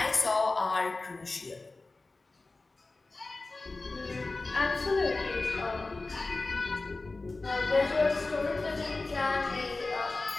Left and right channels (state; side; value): quieter; right; 3.4 dB